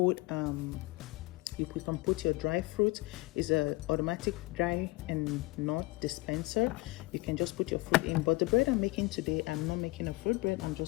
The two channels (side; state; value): right; quieter; 22.5 dB